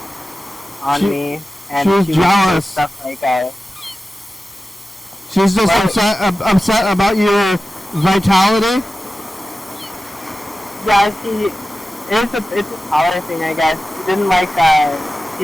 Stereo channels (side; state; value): both; normal; correlation 0.94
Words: on me, and she was jealous. Stuff like she's just upset about your vitality. Yeah, it's a power thing, I guess. She didn't like